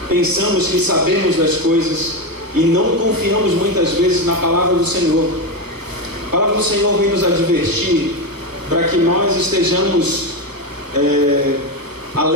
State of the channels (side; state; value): left; late; 1.0 ms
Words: pensamos que sabemos das coisas e não confiamos muitas vezes na palavra do Senhor. A palavra do Senhor vem nos advertir para que nós estejamos